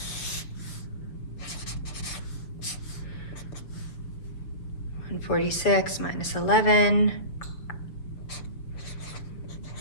146 minus 11.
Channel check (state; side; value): late; right; 6.7 ms